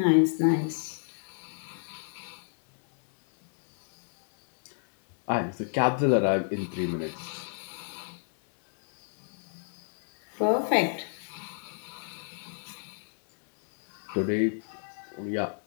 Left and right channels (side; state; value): right; silent; digital silence